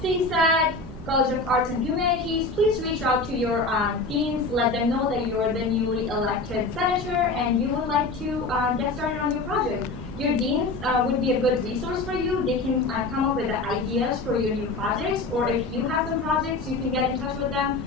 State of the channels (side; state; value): right; quieter; 3.4 dB